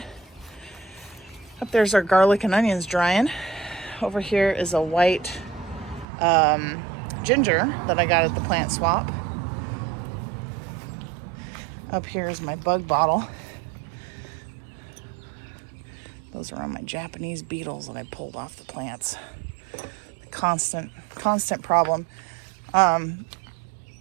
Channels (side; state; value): left; drops out; at 6.1 s